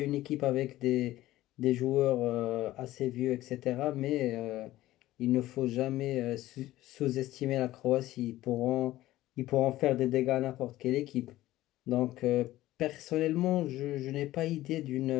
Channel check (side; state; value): right; quieter; 15.8 dB